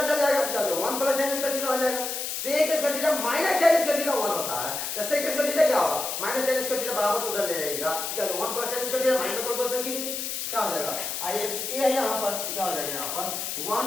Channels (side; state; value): left; noise; hiss, 4 dB below the sound